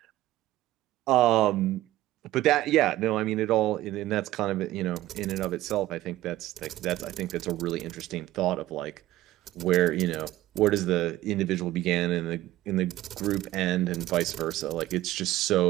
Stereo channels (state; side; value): quieter; left; 15.7 dB